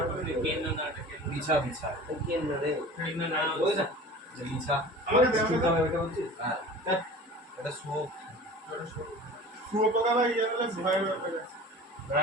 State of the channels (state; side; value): normal; both; correlation 0.40